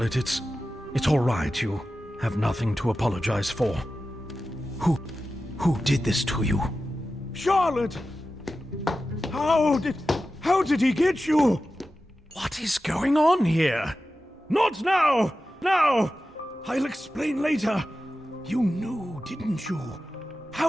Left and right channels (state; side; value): normal; both; correlation 0.93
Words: it's all right. You have nothing to apologize for. Who did this to you? Charlotte! How did he get you? What is going on here? Not now! Now! I'll explain later. You knew, didn't you?